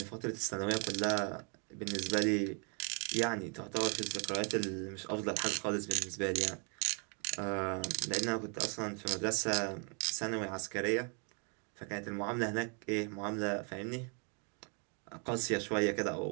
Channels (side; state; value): left; quieter; 38.2 dB